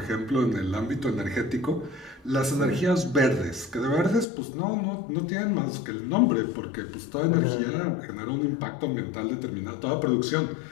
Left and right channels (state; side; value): drops out; right; at 4.2 s